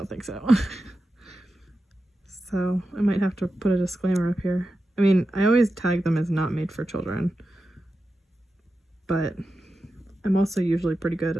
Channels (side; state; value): both; normal; correlation 0.91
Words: think so. So I might have to put a disclaimer up here. I mean, I always tag them as not made for children, but I'm also usually pretty good,